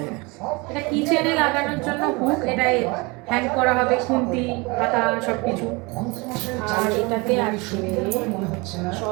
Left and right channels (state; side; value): quieter; left; 26.6 dB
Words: এটা কিচেনে লাগানোর জন্য হুক, এটাই হ্যাং করা হবে, খুন্তি পাতা সব কিছু। আর এটাতে আছে